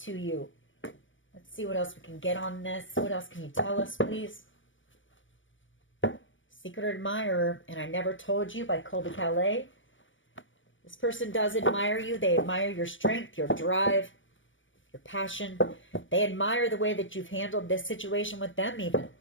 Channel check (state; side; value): late; right; 0.56 ms